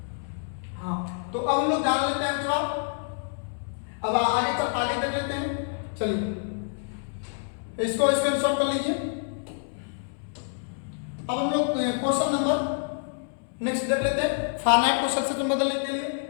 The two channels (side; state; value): right; silent; 60 dB below the other